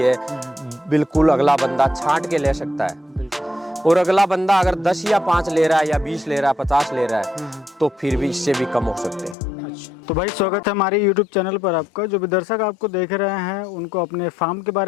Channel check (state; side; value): drops out; right; at 9.3 s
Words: है। बिल्कुल अगला बंदा छांट के ले सकता है। और अगला बंदा अगर 10 या 5 ले रहा है या 20 ले रहा है, 50 ले रहा है, तो फिर भी इससे भी कम हो सकते हैं। अच्छा, तो भाई स्वागत है हमारे YouTube चैनल पर आपका। जो भी दर्शक आपको देख रहे हैं उनको अपने फार्म के